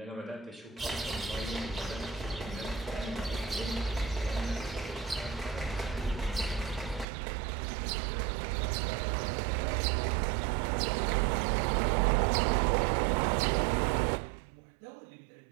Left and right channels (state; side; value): drops out; left; at 7.1 s